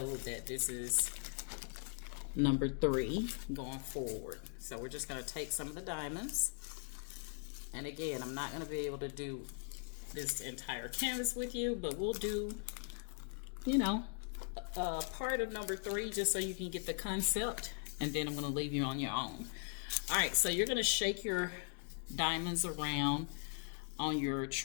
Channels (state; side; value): silent; right; 51 dB below the other